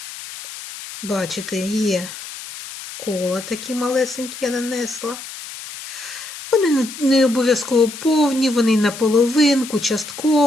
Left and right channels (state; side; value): noise; left; hiss, 12 dB below the sound